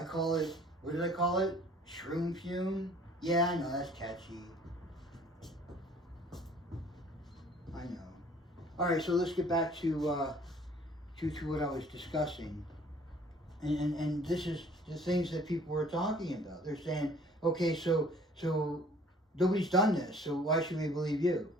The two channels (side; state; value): both; normal; correlation 0.54